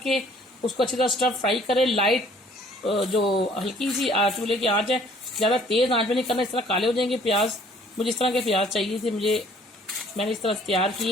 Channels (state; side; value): normal; both; correlation 0.57